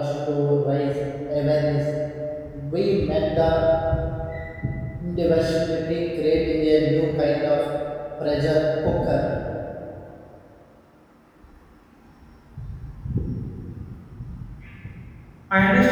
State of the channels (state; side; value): identical; both; correlation 1.00